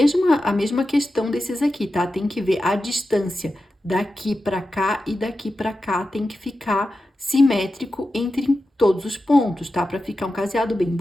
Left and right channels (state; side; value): normal; both; correlation 0.92